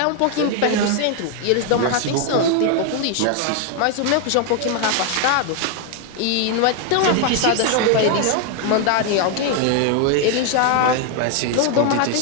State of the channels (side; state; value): both; different; correlation 0.00